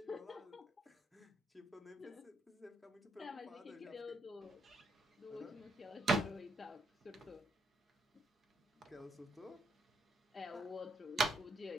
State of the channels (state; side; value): normal; both; correlation 0.75